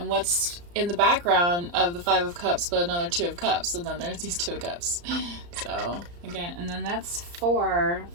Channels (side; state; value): left; late; 34 ms